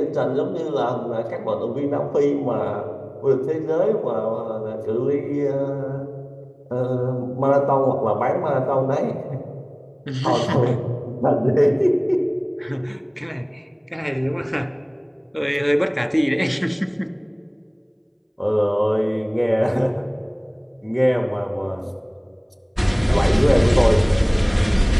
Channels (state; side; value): identical; both; correlation 1.00